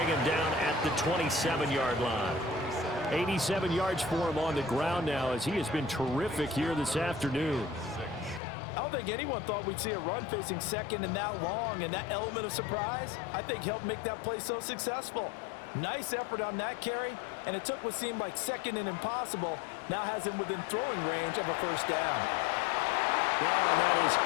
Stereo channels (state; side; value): drops out; right; at 8.4 s